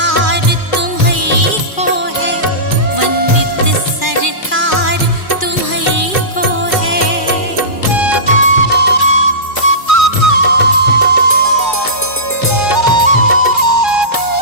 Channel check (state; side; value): late; right; 2.4 ms